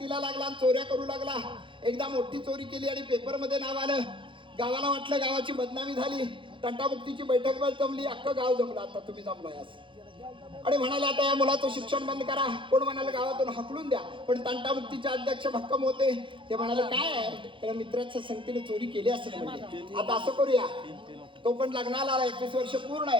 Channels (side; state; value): left; late; 0.24 ms